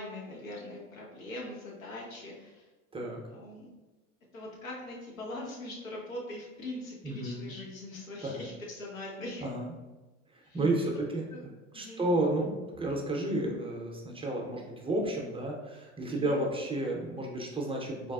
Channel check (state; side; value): normal; both; correlation 0.47